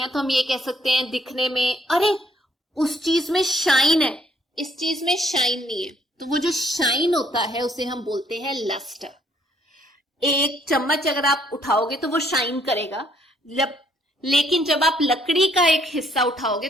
तो हम ये कह सकते हैं दिखने में, अरे उस चीज में शाइन है, इस चीज में शाइन नहीं है। तो वो जो शाइन होता है उसे हम बोलते हैं लस्टर। एक चम्मच अगर आप उठाओगे तो वो शाइन करेगा, लेकिन जब आप लकड़ी का एक हिस्सा उठाओगे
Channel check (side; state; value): both; normal; correlation 0.67